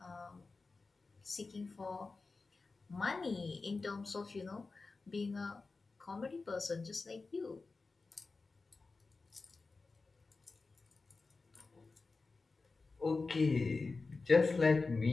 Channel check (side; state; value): right; quieter; 3.9 dB